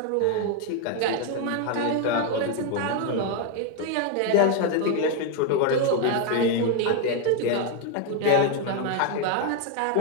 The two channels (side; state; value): both; different; correlation 0.01